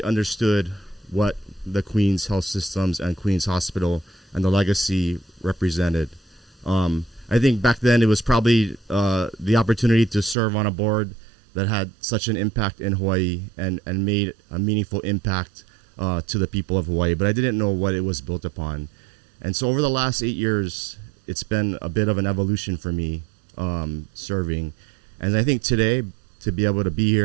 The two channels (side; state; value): left; drops out; at 10.4 s